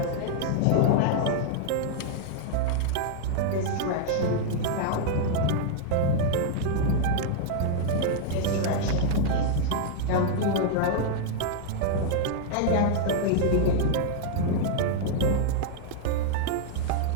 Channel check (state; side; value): different; both; correlation 0.00